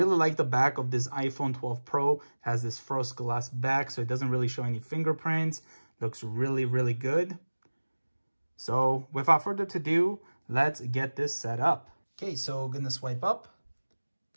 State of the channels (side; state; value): both; inverted; correlation -1.00